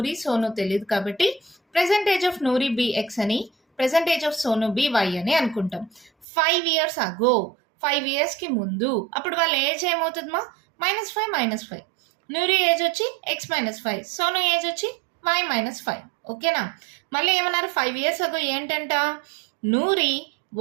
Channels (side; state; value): left; drops out; at 6.2 s